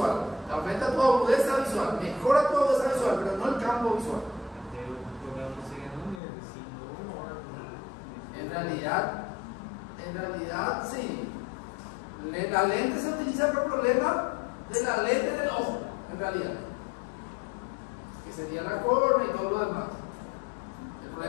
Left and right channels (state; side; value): drops out; right; at 6.2 s